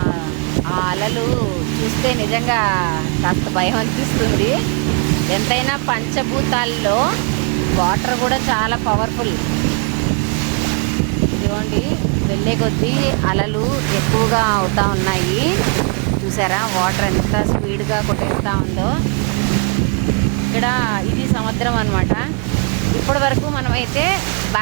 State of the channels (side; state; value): left; quieter; 37.1 dB